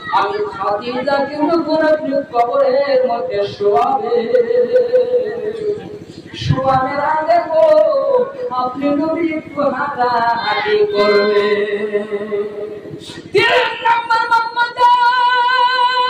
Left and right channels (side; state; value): both; identical; correlation 1.00